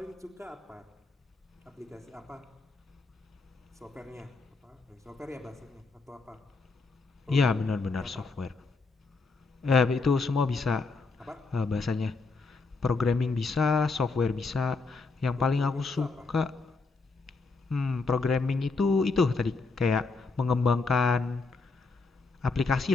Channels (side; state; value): right; quieter; 4.0 dB